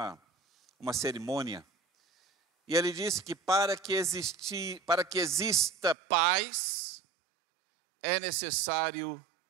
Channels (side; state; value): left; drops out; at 6.0 s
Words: cerimônia. E ele disse que para que exista paz, é necessário